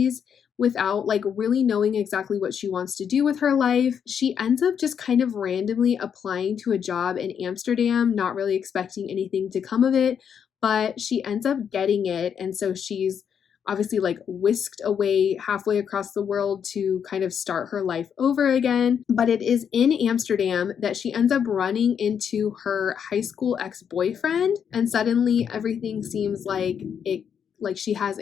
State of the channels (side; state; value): right; quieter; 7.7 dB